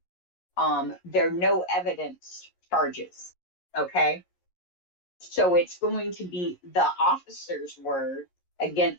They're no evidence charges. Okay. So it's going to be the officer's word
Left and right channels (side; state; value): right; late; 11 ms